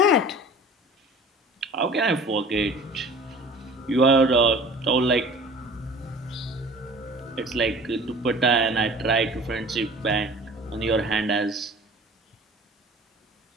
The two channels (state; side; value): normal; both; correlation 0.44